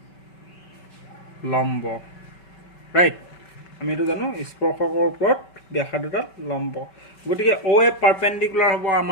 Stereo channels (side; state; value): right; late; 5.2 ms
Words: লম্ব ৰাইট আমি এইটো জানো স্পৰ্শকৰ ওপৰত ব্যাসাৰ্ধডাল লম্ব গতিকে OA পাৰপেণ্ডিকুলাৰ হ'ব